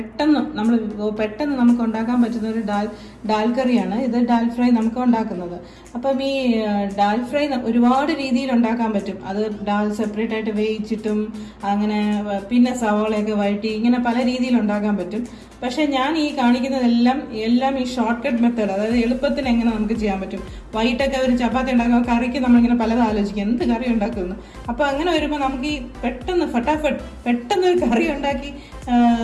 നമുക്ക് ഉണ്ടാക്കാൻ പറ്റുന്ന ഒരു ഡാൽ കറിയാണ് ഇത്. ഡാൽ ഫ്രൈ നമുക്ക് ഉണ്ടാക്കുന്നത്. അപ്പം ഈ ഡാൽ ഫ്രൈ ഒരുപാട് രീതിയിൽ ഉണ്ടാക്കാൻ പറ്റും. അത് ഡാൽ സെപ്പറേറ്റ് ആയിട്ട് വേവിച്ചിട്ടും അങ്ങനെ പിന്നെ സവാളയൊക്കെ വഴറ്റി ഇങ്ങനെ പല രീതിയിൽ ഉണ്ടാക്കാൻ പറ്റും. പക്ഷെ ഞാൻ ഈ കാണിക്കുന്നതെല്ലാം ഈ ഷോർട്ട് കട്ട് മെത്തേഡ്, അതായത് എളുപ്പത്തിന് എങ്ങനെ നമുക്ക് ചെയ്യാൻ പറ്റും. വൈകിട്ടൊക്കെ ഒരു ചപ്പാത്തി ഉണ്ടാക്കുമ്പോൾ കറിക്ക് നമ്മളിങ്ങനെ പലതും ആലോചിക്കും എന്ത് കറി ഉണ്ടാക്കുമെന്ന്. അപ്പോൾ അങ്ങനെ വരുമ്പോൾ നമുക്ക് ഈ പെട്ടെന്ന് ഒരു കറി ഉണ്ടാക്കി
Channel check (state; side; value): identical; both; correlation 1.00